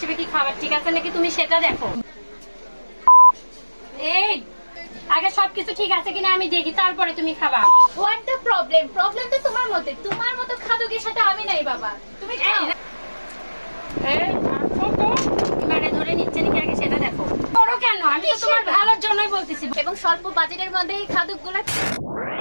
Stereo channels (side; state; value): both; inverted; correlation -1.00